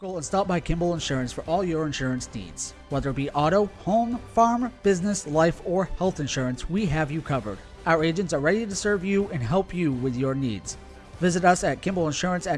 And stop by Kimball Insurance for all your insurance needs. Whether it be auto, home, farm, business, life, or health insurance, we have you covered. Our agents are ready to serve you and help you with your needs. Visit us at Kimball Insurance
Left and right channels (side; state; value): both; identical; correlation 1.00